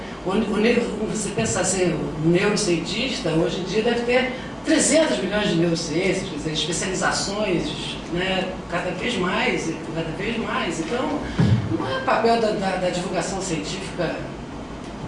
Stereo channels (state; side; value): identical; both; correlation 1.00